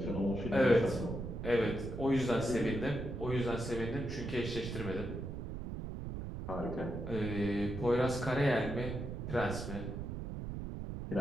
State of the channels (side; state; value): right; noise; rumble, 6 dB below the sound